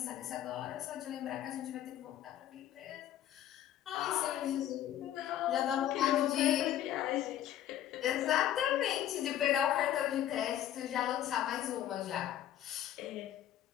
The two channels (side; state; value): right; quieter; 11.7 dB